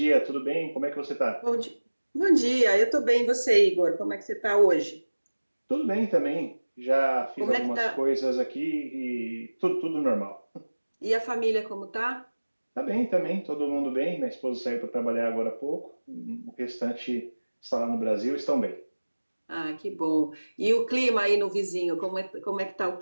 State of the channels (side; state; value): both; inverted; correlation -1.00